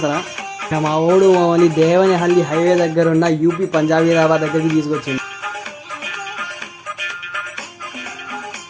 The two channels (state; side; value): identical; both; correlation 1.00